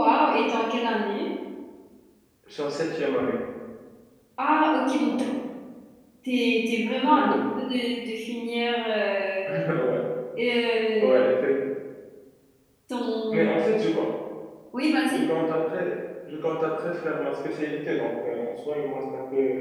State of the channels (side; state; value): both; identical; correlation 1.00